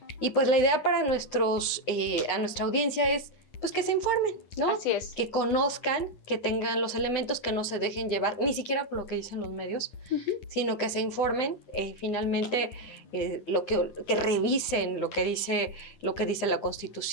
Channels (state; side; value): late; right; 9.9 ms